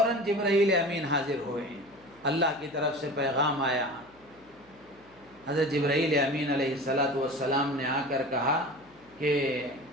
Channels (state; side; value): noise; left; hum, 29 dB below the sound